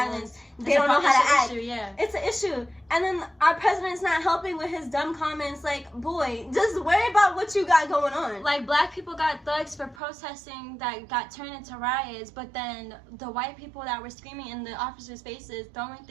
they don't know how to act. It's an issue. And then our president's not helping with his dumb comments. Like, boy, just worry about what you got going on. Like, black people got thugs for protesting that got turned into riots, but then the white people that were screaming in the officers' faces, throwing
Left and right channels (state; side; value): drops out; left; at 10.0 s